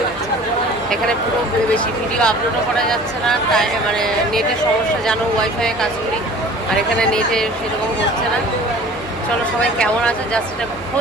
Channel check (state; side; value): normal; both; correlation 0.45